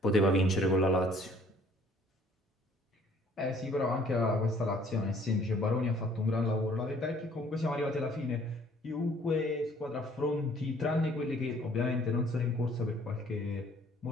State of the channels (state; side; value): normal; both; correlation 0.58